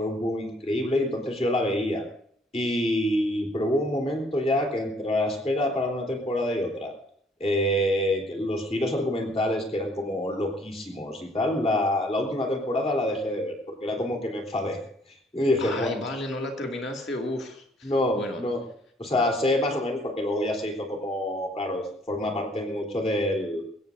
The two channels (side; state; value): both; normal; correlation 0.62